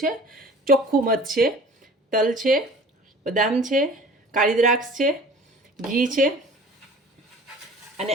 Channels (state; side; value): normal; both; correlation 0.45